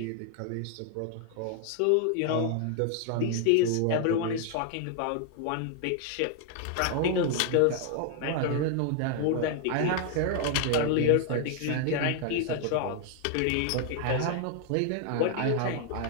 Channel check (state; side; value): different; both; correlation 0.00